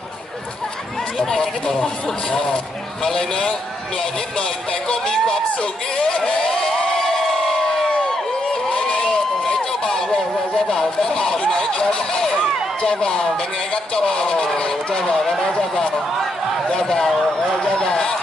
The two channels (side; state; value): both; normal; correlation 0.78